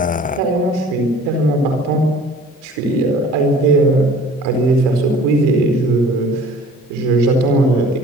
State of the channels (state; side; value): normal; both; correlation 0.48